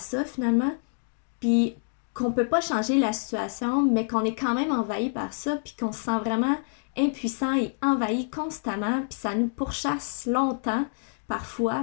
finalement, puis qu'on peut pas changer la situation, mais qu'on est quand même envahi par ça, puis qu'on se sent vraiment impuissant et envahi constamment, puis ça nous pourchasse longtemps,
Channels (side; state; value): right; silent; digital silence